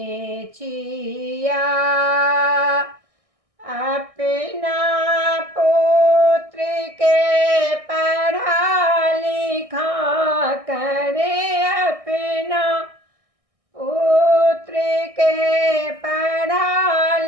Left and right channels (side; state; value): left; late; 1.6 ms